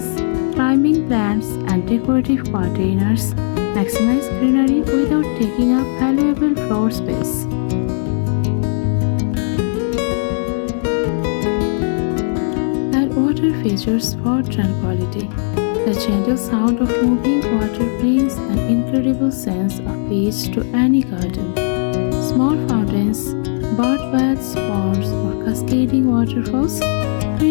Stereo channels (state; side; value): silent; right; digital silence